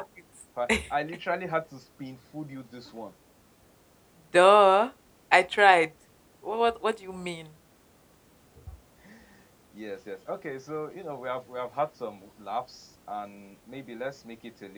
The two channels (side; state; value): both; identical; correlation 1.00